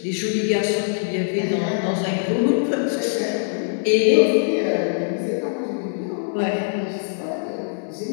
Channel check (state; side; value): silent; right; 61 dB below the other